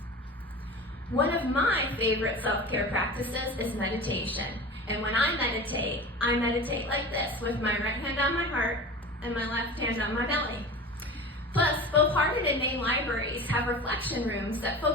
One of my favorite self-care practices is meditation. And when I meditate like this, with my right hand on my heart and my left hand on my belly. Plus, both Hardin and Main libraries have reflection rooms that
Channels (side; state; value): both; normal; correlation 0.34